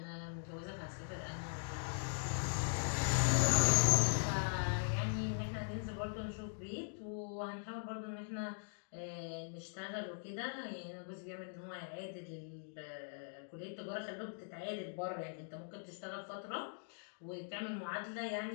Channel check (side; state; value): right; silent; digital silence